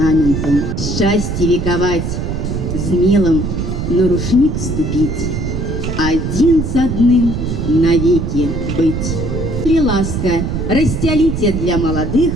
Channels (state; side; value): noise; right; rumble, 3 dB below the sound